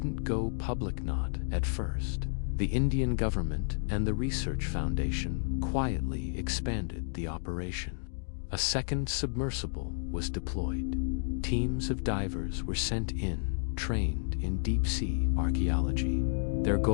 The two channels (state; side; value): silent; right; digital silence